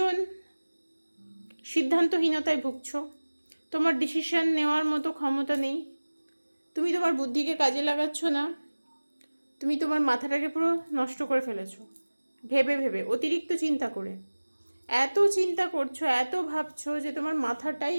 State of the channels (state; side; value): inverted; both; correlation -1.00